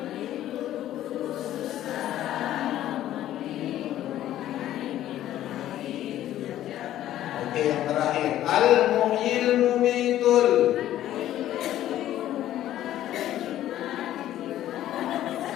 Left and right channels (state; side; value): quieter; right; 12.8 dB